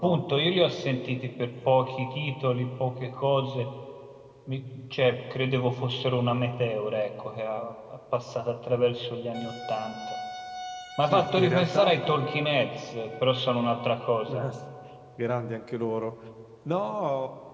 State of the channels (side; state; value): both; identical; correlation 1.00